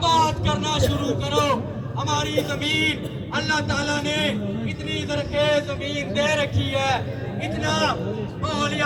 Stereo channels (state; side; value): identical; both; correlation 1.00